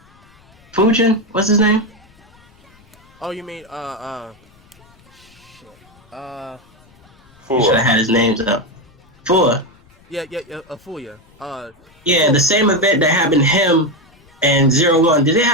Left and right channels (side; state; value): left; noise; rumble, 29 dB below the sound